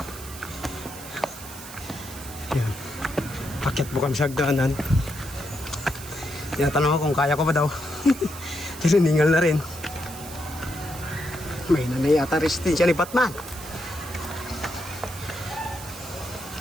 Ayan. Akyat po kami sa hagdanan. Tinatanong ako kung kaya ko ba daw. Tininingal na rin. May nanay ata resistensya ni Batman.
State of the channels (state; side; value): noise; right; hiss, 14 dB below the sound